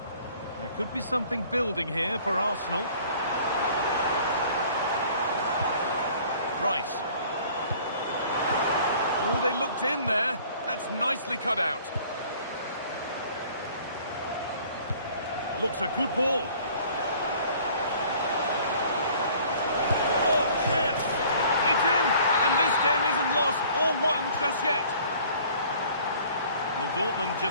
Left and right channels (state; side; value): inverted; both; correlation -0.52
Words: There could be something building here for Arsenal. Rice. Oh, they looked in there. That's nicely cut out. Looks a good ball. Oh, chance! It's in! And this game isn't lost or won just yet. Well, Dortmund